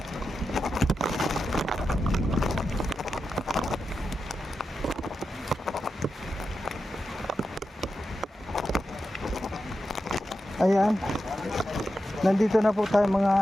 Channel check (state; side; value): normal; both; correlation 0.89